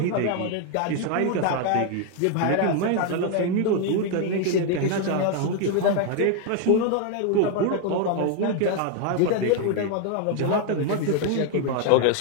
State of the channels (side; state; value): both; different; correlation 0.01